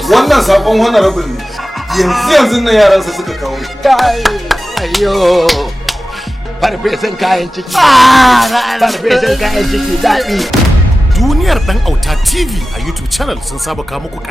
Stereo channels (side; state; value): both; normal; correlation 0.95